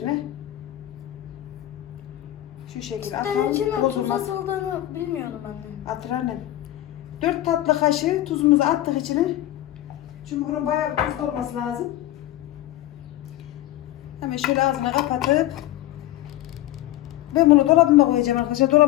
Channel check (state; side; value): quieter; right; 14.7 dB